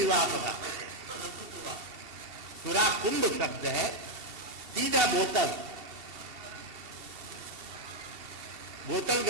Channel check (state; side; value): late; left; 2.7 ms